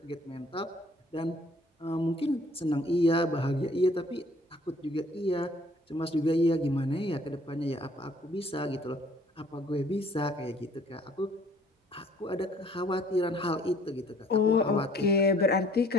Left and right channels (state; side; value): normal; both; correlation 0.58